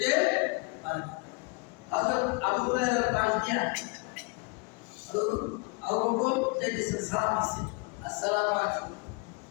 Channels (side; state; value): right; quieter; 30.4 dB